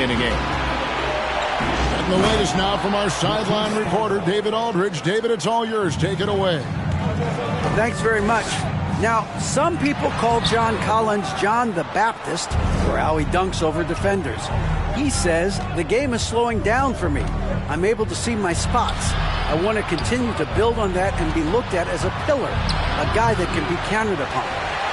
in a game. And the latest now from our sideline reporter, David Aldridge. David, it's all yours. Take it away. Thanks very much. Now, some people call John Collins John the Baptist for how he dunks over defenders. He says, the game is slowing down for me. I'm able to see my spots. I want to continue to build on that and be looked at as a pillar, a guy that can be counted upon.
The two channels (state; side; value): identical; both; correlation 1.00